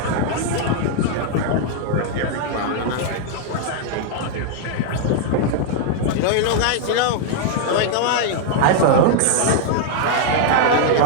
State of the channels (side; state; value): both; different; correlation -0.01